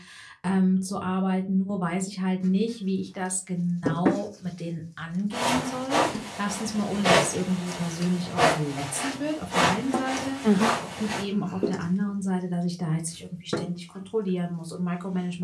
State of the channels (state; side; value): identical; both; correlation 1.00